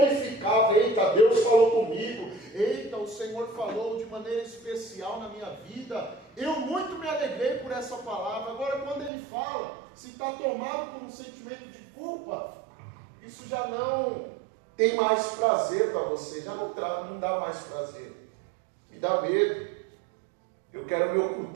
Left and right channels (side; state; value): left; drops out; at 9.1 s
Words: eita, Deus falou comigo, eita, o Senhor falou de maneira especial na minha vida, eu muito me alegrei por essa palavra. Agora, quando ele fala, se está tomado por um sentimento de culpa, isso já não tem mais prazer para você, já não dá mais prazer. Me dá medo. Eu quero me